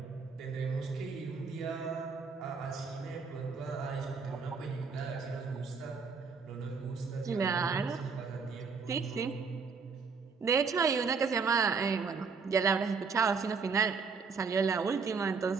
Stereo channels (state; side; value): quieter; left; 5.2 dB